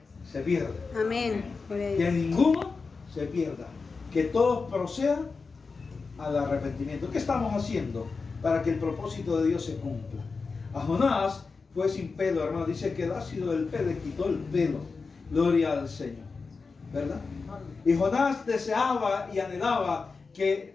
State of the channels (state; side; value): quieter; right; 4.5 dB